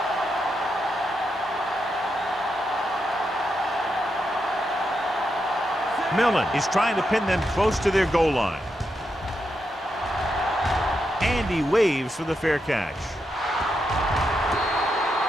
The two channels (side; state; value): both; normal; correlation 0.84